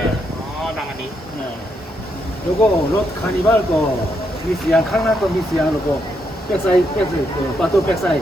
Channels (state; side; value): normal; both; correlation 0.79